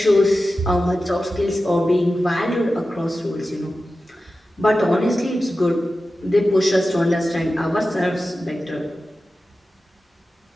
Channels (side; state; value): both; normal; correlation 0.94